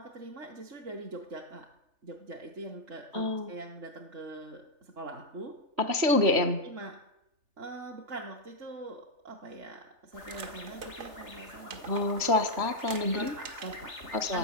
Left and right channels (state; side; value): late; left; 3.4 ms